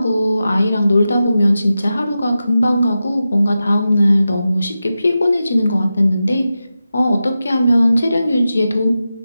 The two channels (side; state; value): both; inverted; correlation -0.92